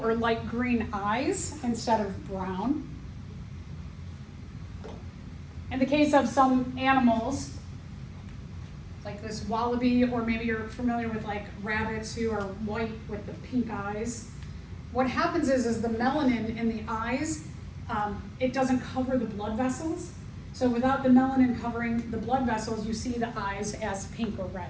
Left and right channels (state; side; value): identical; both; correlation 1.00